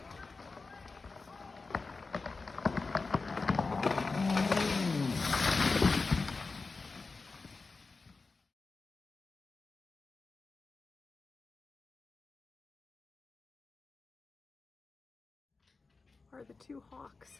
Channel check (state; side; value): quieter; right; 4.0 dB